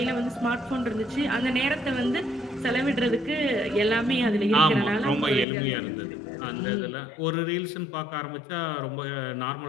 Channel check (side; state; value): right; drops out; at 5.5 s